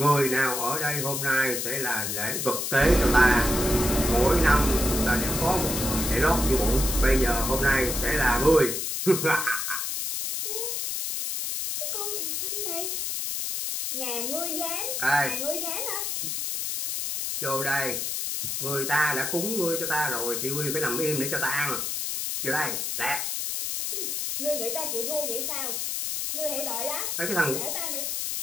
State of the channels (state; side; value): noise; left; hiss, 2 dB below the sound